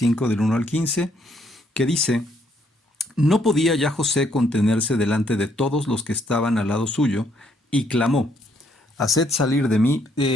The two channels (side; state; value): both; normal; correlation 0.70